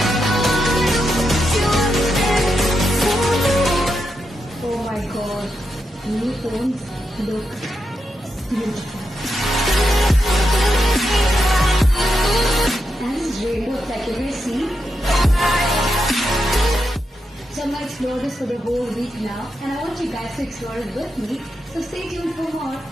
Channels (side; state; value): both; normal; correlation 0.85